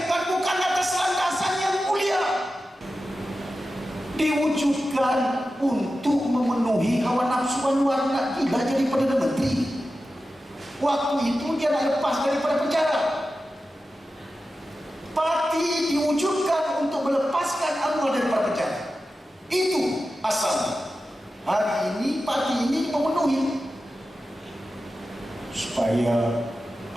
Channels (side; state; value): both; normal; correlation 0.93